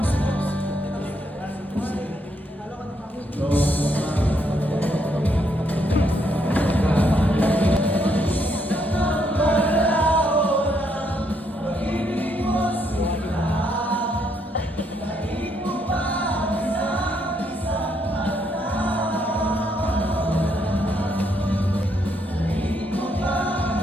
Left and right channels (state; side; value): normal; both; correlation 0.74